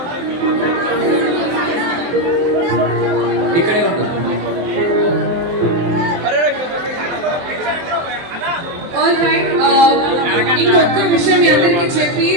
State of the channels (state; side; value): late; left; 23 ms